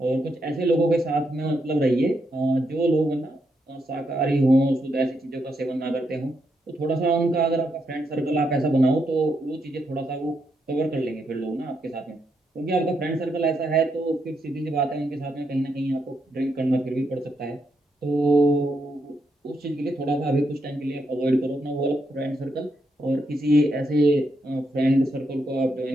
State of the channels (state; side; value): normal; both; correlation 0.80